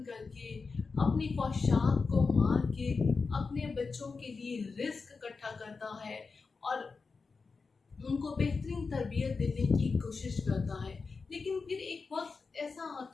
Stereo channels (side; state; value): right; quieter; 4.6 dB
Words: करके, अपनी ख्वाहिशात को मार के अपने बच्चों के लिए रिस्क इकट्ठा करता है और उनको बेहतरीन तरबियत देने की कोशिश करता है। लेकिन फिर एक वक्त ऐसा